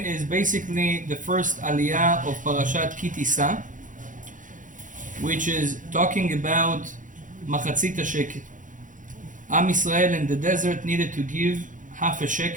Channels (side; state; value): left; late; 0.38 ms